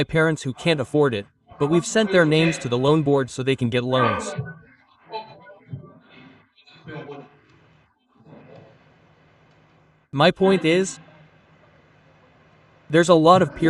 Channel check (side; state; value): both; identical; correlation 1.00